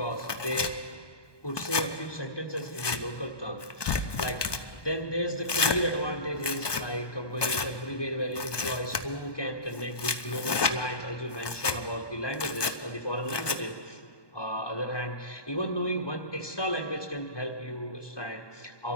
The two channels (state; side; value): late; right; 1.2 ms